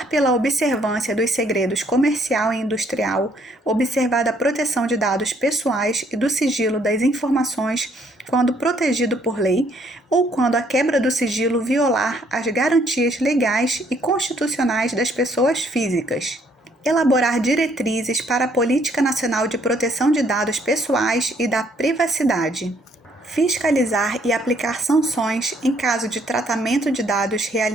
pela observância dos segredos comercial e industrial, observada a proteção de dados pessoais e do sigilo das informações quando protegido por lei ou quando a quebra do sigilo violar as garantias legais e constitucionais das pessoas físicas. Elaborar diretrizes para a Política Nacional de Proteção de Dados Pessoais e da Privacidade. Fiscalizar e aplicar sanções em caso de tratamento de dados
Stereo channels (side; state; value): both; normal; correlation 0.66